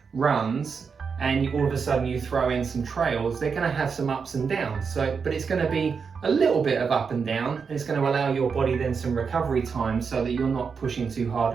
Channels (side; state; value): left; quieter; 5.7 dB